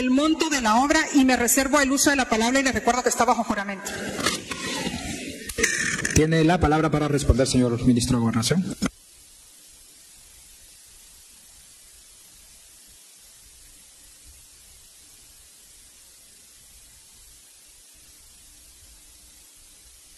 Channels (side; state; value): both; identical; correlation 1.00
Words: monto de la obra? Y me reservo el uso de la palabra y le recuerdo que está bajo juramento. Tiene la palabra para responder, señor ministro de Gobernación.